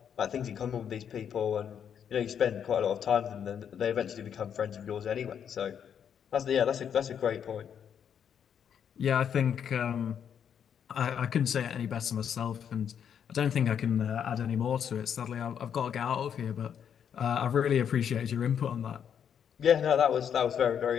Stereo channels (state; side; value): quieter; right; 8.3 dB